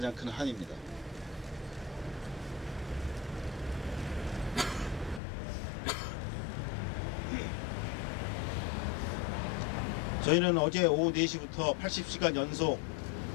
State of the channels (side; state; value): right; drops out; at 5.2 s